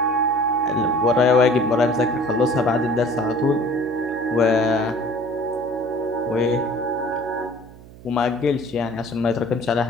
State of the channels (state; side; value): noise; right; hum, 20 dB below the sound